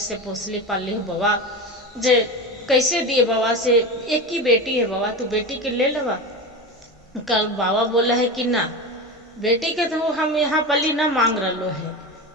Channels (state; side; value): normal; both; correlation 0.24